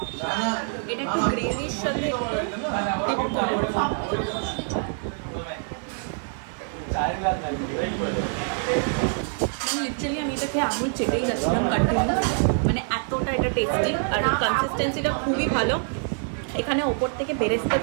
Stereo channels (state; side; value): silent; left; 55 dB below the other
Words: এটা একটু গ্রেভির সাথে একটু ডিপ করে, লিটারালি আমি এটা খেয়ে আঙুল চেটেই যাচ্ছিলাম কন্টিনিউ, মানে এতটা এটা টেস্টি আর কনসিস্টেন্সিটা খুবই ভালো। এখানে ওপর থেকে বেরেস্তা